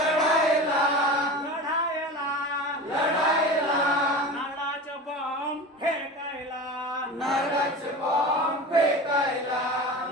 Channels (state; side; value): normal; both; correlation 0.32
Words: लढायला लढायला नारळाचं बॉम्ब फेकायला नारळाचे बॉम्ब फेकायला